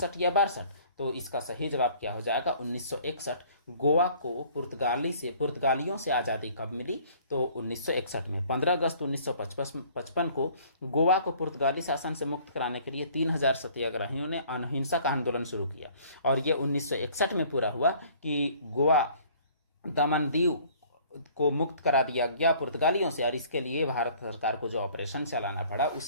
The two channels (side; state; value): both; inverted; correlation -0.54